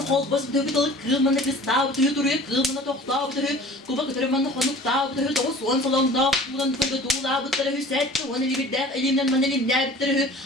kol basıp dövü dalık, kılmanı kız tabi tüyü duruyor, kılmanı tok tabi tüyü. Kuba kıtırmanı konuk tabi tüyü, doğu soğan salonda, bulan tüyü tuğla bıttırı hüsetti. Onu bir def, elimden man elimden bittiri.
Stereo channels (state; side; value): normal; both; correlation 0.45